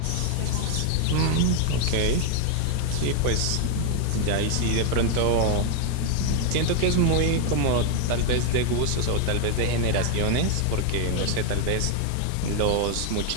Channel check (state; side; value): different; both; correlation 0.00